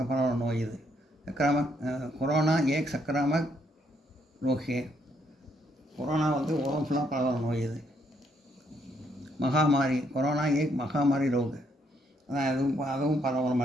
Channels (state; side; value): normal; both; correlation 0.73